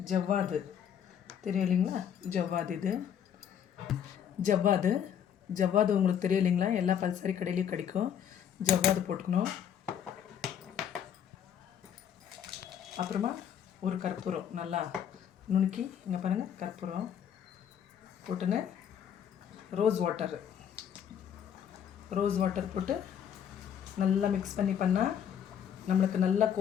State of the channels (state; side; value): quieter; right; 8.8 dB